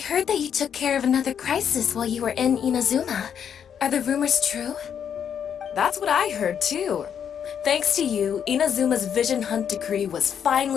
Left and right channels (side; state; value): right; quieter; 8.2 dB